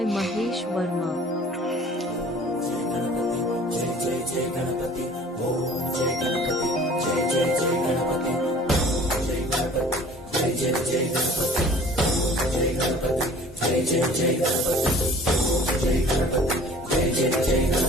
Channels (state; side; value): normal; both; correlation 0.48